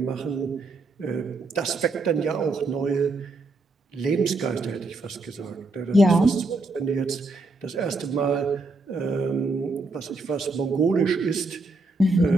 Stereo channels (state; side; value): quieter; left; 3.2 dB